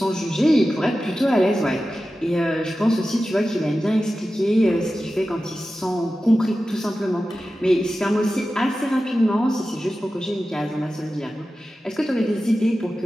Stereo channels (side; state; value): both; normal; correlation 0.94